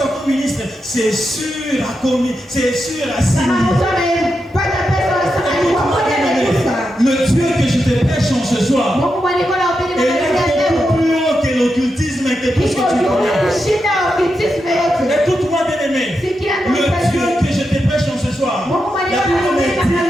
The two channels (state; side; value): normal; both; correlation 0.87